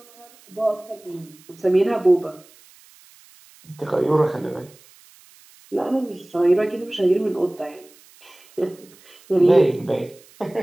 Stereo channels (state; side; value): noise; right; hiss, 26 dB below the sound